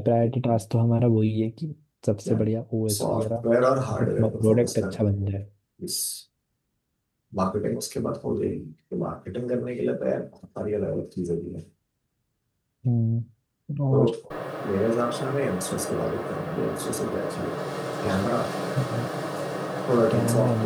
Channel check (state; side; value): identical; both; correlation 1.00